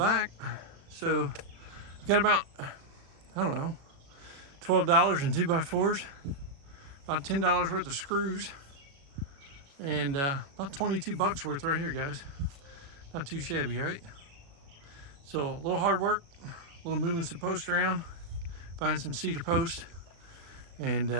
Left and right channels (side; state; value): left; late; 36 ms